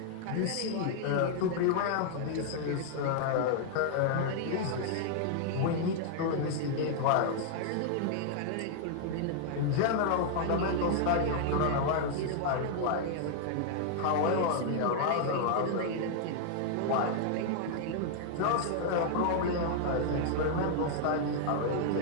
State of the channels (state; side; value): different; both; correlation -0.01